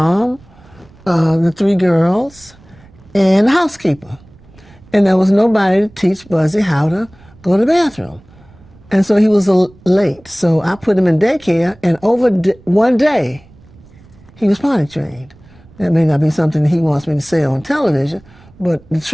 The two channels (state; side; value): noise; right; rumble, 26 dB below the sound